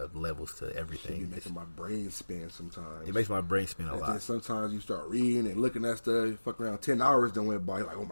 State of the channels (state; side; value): inverted; both; correlation -1.00